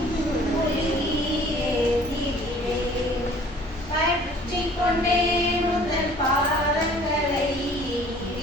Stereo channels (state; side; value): normal; both; correlation 0.52